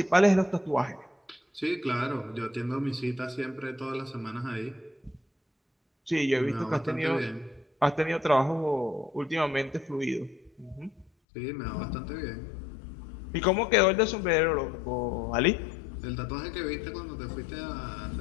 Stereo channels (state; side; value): drops out; right; at 11.1 s